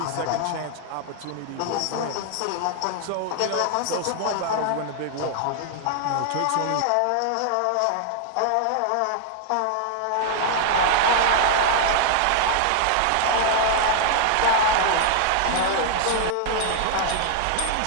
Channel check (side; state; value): both; different; correlation 0.00